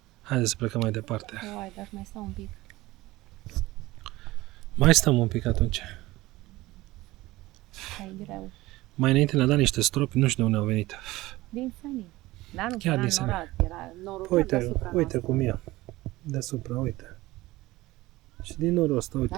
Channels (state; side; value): quieter; left; 18.7 dB